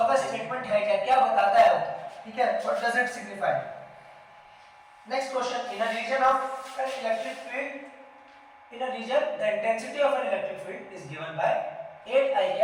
का स्टेटमेंट है क्या, क्या बताता है वो, ठीक है, what does it signify. Next question, in a region of an electric field, in a region the intensity of an electric field is given by 8 I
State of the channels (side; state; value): both; identical; correlation 1.00